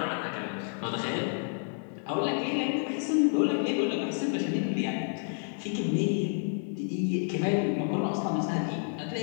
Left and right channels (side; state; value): right; silent; 58 dB below the other